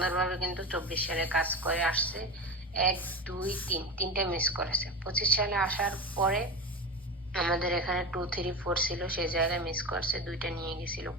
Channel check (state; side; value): normal; both; correlation 0.24